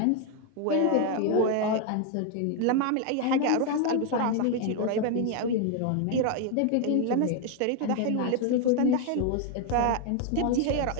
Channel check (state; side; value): different; both; correlation 0.01